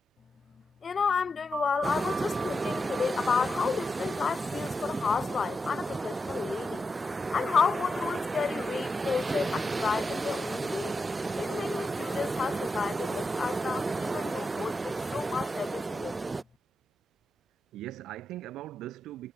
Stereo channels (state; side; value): normal; both; correlation 0.87